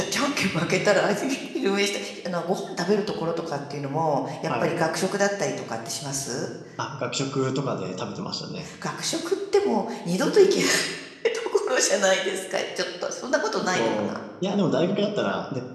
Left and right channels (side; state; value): both; identical; correlation 1.00